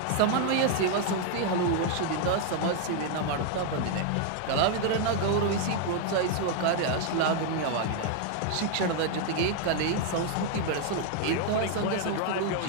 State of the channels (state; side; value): different; both; correlation 0.00